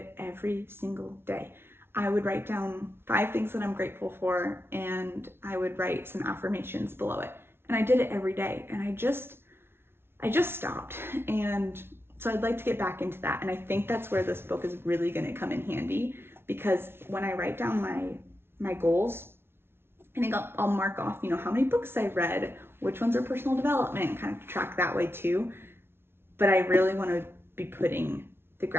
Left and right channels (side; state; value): left; late; 0.12 ms